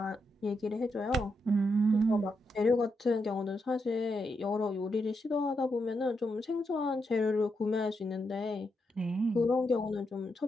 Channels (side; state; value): both; normal; correlation 0.83